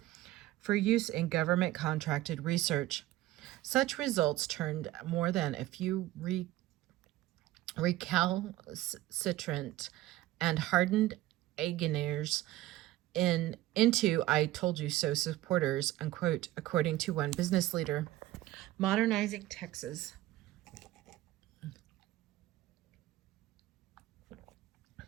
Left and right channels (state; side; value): quieter; left; 15.8 dB